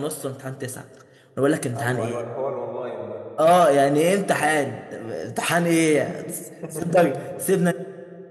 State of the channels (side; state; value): both; identical; correlation 1.00